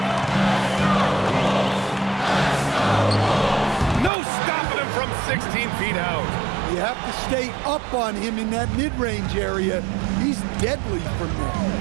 No stopping him from 16 feet out. You have to stay up on him in that mid-range area. He's deadly from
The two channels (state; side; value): drops out; left; at 4.1 s